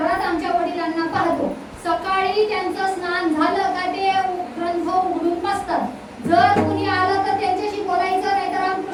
आमच्या वडिलांना पाहतो, सकाळी त्यांचं स्नान झालं का ते ग्रंथ उघडून बसतात. जर कुणी आलं तर त्यांच्याशी बोलायचं, नाही तर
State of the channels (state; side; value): identical; both; correlation 1.00